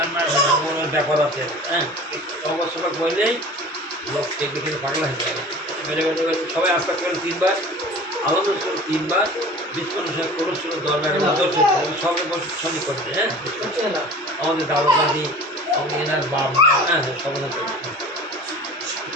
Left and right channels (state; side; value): normal; both; correlation 0.40